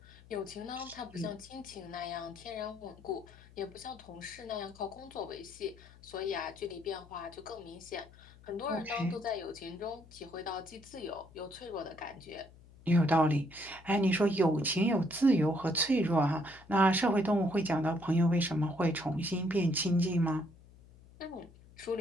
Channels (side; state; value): left; noise; hum, 23 dB below the sound